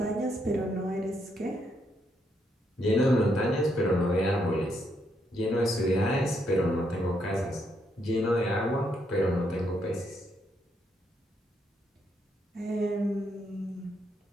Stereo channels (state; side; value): normal; both; correlation 0.76